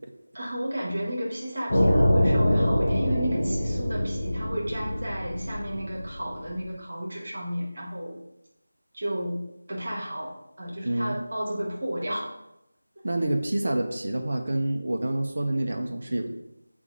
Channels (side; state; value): both; inverted; correlation -0.97